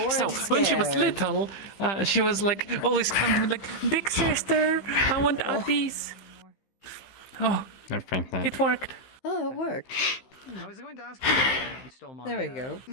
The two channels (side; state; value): right; late; 15 ms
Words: so scared. when she was little, she was like always coming to me like, "Big sister, I want uppies." Oh, it worked. Oh, it worked. I was going to ask you if you stole my. There we go.